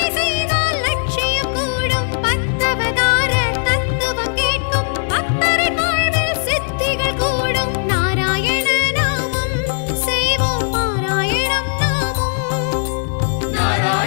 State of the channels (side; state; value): right; silent; digital silence